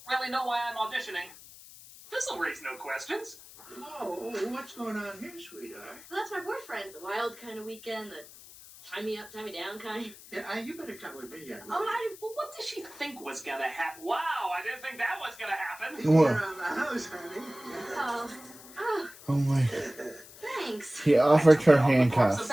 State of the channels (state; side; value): noise; left; hiss, 19 dB below the sound